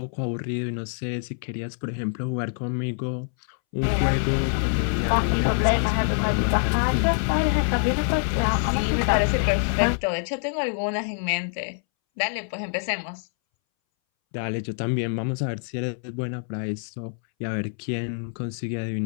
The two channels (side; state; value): right; silent; 61 dB below the other